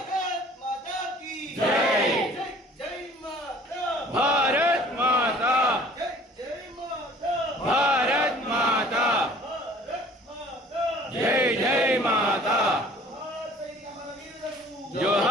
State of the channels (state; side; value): normal; both; correlation 0.51